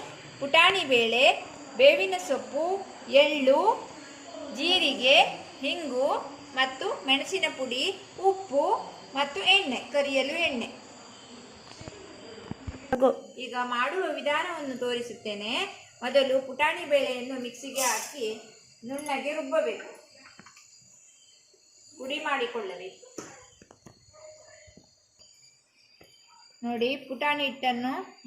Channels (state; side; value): identical; both; correlation 1.00